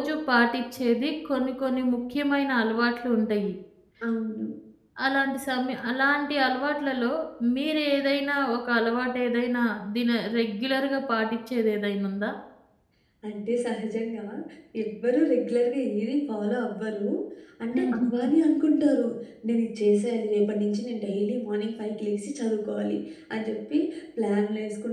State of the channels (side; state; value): both; identical; correlation 1.00